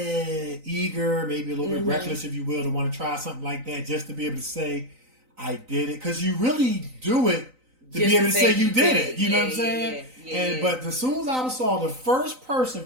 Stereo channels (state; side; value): late; left; 3.9 ms